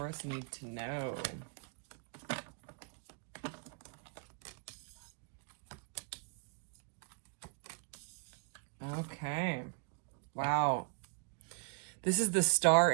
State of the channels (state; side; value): quieter; left; 37.0 dB